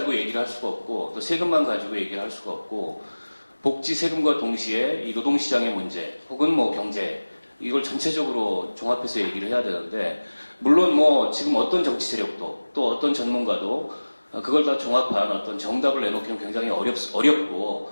얘기를 할 수가 없고 또 세금만 가지고 얘기를 할 수가 없고 복지 세금과 동시에 이 노동시장의 문제 혹은 뭐 경제 이걸 전체적으로 종합해서 얘기를 해야 되는데 물론 뭐 지금 어떤 정치 세력도 또 어떤 전문가도 그걸 다 종합한 어떤 정답을 내놓기는 굉장히 어렵고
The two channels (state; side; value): inverted; both; correlation -1.00